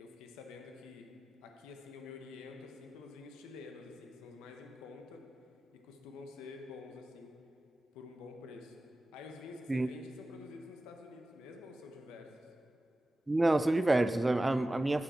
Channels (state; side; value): normal; both; correlation 0.95